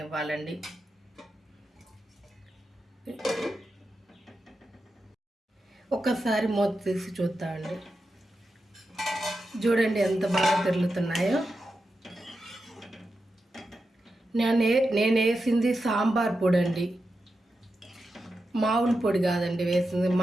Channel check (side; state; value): both; normal; correlation 0.89